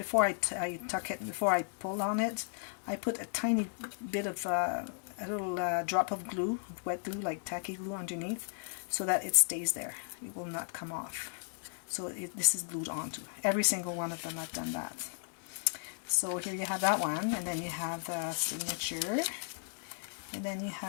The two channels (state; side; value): silent; right; digital silence